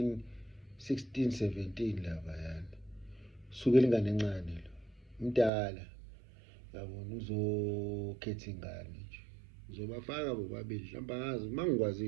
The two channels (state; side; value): drops out; left; at 5.5 s